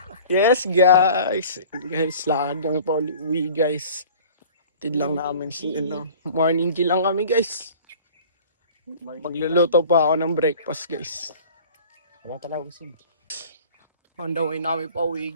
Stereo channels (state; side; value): inverted; both; correlation -0.45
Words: Yes guys. Guys, lakad kami pa uwi guys. Tid lang namin si morning G lang kami guys. Magluluto pa ako ng breakfast guys. Wala talaga gusto. On the way namin pa uwi